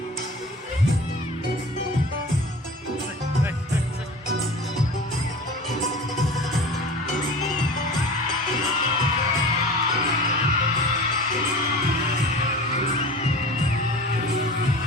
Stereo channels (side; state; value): both; normal; correlation 0.38